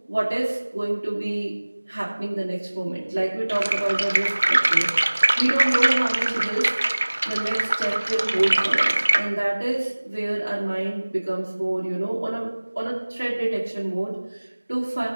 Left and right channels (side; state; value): both; inverted; correlation -1.00